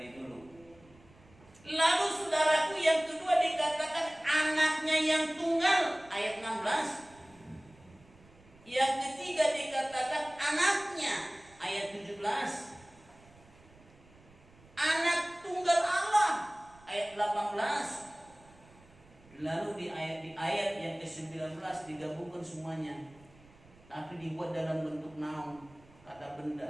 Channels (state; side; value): noise; right; rumble, 26 dB below the sound